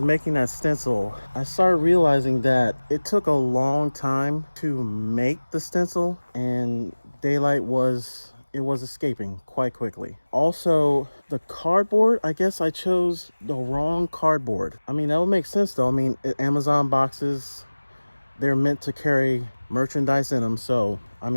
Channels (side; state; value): both; inverted; correlation -1.00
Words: making that stencil, I started realizing that it took a long time to make the stencil, and daylight was escaping quite quickly. Also, the cardboard, I guess I chose the wrong cardboard. I mean, that would make sense though. I mean, Amazon boxes, they're meant to carry merchandise in them, so I